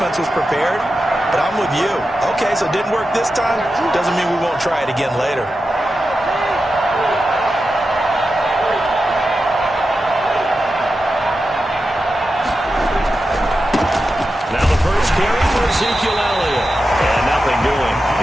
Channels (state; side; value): normal; both; correlation 0.91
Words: was prepared. But I'm with you. Okay, so it didn't work this time. Doesn't mean we won't try it again later. Now the first carry for Ezekiel Elliott. And nothing doing.